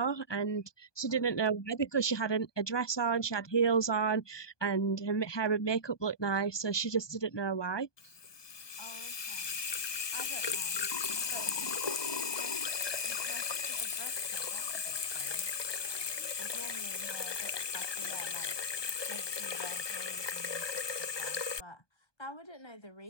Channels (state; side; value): late; right; 1.2 ms